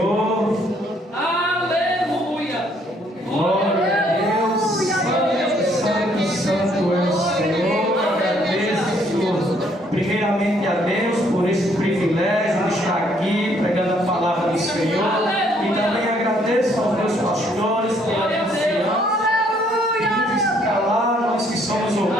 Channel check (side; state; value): both; normal; correlation 0.66